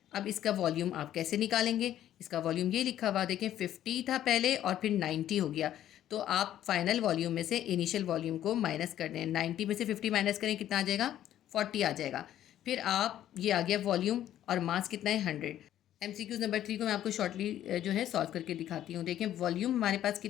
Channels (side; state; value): right; quieter; 11.8 dB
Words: अब इसका वॉल्यूम आप कैसे निकालेंगे? इसका वॉल्यूम ये लिखा हुआ देखें, 50 था पहले और फिर 90 हो गया। तो आप फाइनल वॉल्यूम में से इनिशियल वॉल्यूम को माइनस कर दें। 90 में से 50 माइनस करें, कितना आ जाएगा? 40 आ जाएगा। फिर आप ये आ गया वॉल्यूम और मास कितना है? 100। MCQ नंबर 3 को मैं आपको शॉर्टली जो है सॉल्व करके दिखाती हूँ। देखें वॉल्यूम हमारे पास